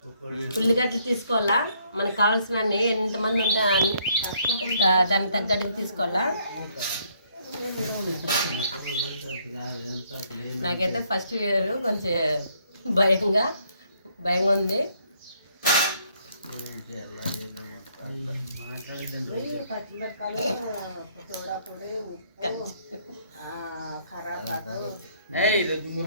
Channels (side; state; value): both; inverted; correlation -0.68